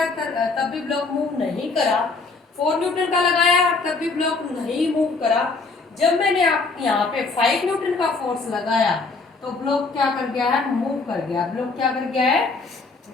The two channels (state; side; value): quieter; right; 4.0 dB